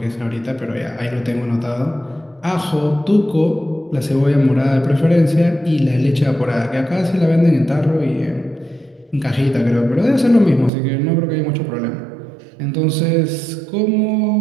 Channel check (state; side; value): drops out; left; at 10.7 s